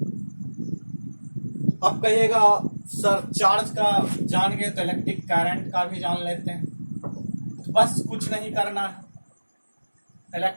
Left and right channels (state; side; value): inverted; both; correlation -1.00